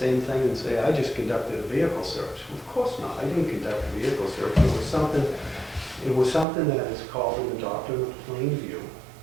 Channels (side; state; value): left; drops out; at 6.5 s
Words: thing and say, I just conducted a vehicle search? Of course not. I didn't conduct a vehicle search. It was something that is called in the doctrine of plain view.